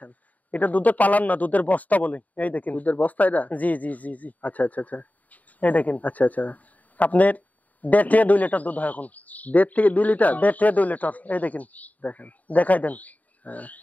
এটা দুধের পালান না, দুধের বস্তা বলে। এই দেখেন। দুধের বস্তা এটা? জি জি জি জি। আচ্ছা আচ্ছা আচ্ছা এই দেখেন আচ্ছা আচ্ছা। আপনার 1.5 থেকে 2 লিটার দুধ হয় এখন। 1.5 থেকে 2 লিটার? 1.5 থেকে 2 লিটার। এই দেখেন, দেখেন দেখাই দেন। হ্যাঁ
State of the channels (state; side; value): late; right; 0.075 ms